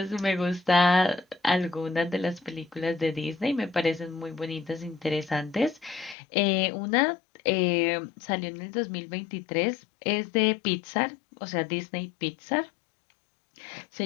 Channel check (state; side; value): drops out; right; at 6.2 s